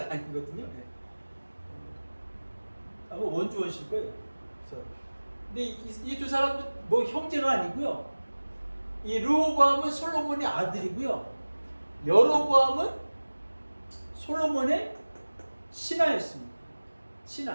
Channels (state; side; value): inverted; both; correlation -1.00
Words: 아니거든요. 아마 원주원실 거예요. 그래서 근데 이 두 사람도 뭐 형제가 아니고요. 이 르호보암은 솔로몬의 아들이고요. 여로보암은 솔로몬의 신하였습니다.